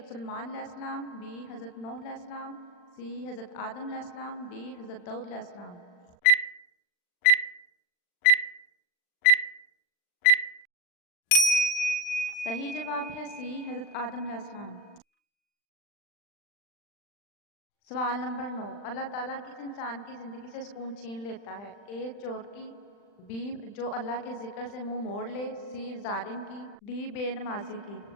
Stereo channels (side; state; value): right; late; 40 ms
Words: सुलेमान अलैहिस्सलाम, बी हज़रत नूह अलैहिस्सलाम, सी हज़रत आदम अलैहिस्सलाम, डी हज़रत दाऊद अलैहिस्सलाम। सही जवाब है सी हज़रत आदम अलैहिस्सलाम। सवाल नंबर 9। अल्लाह ताला किस इंसान की ज़िंदगी से सुकून छीन लेता है? ए चोर की, बी जो अल्लाह के जिक्र से मुंह मोड़ ले, सी जालिम की, डी बेनमाजी की।